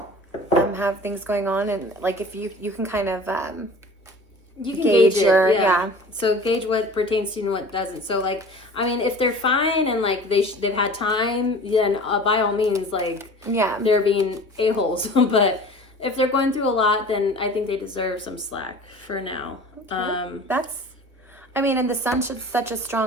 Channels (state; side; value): normal; both; correlation 0.42